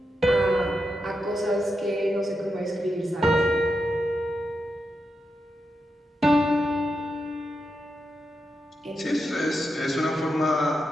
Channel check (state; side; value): normal; both; correlation 0.86